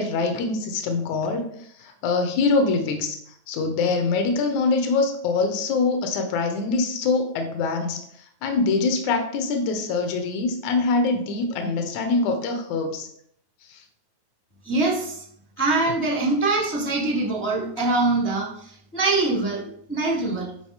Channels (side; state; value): right; late; 9.4 ms